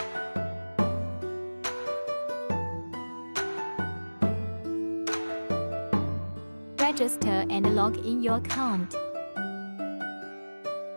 Register and log in your account.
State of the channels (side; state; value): both; inverted; correlation -1.00